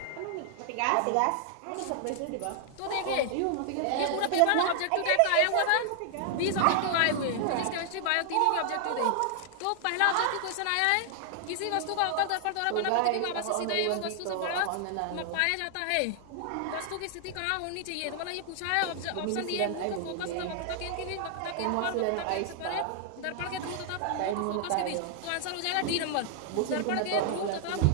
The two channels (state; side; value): different; both; correlation 0.00